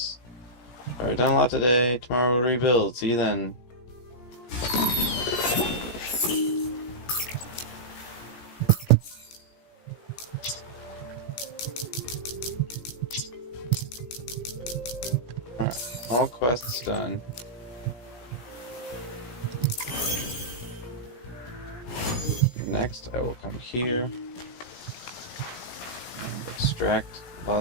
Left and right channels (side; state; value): right; late; 17 ms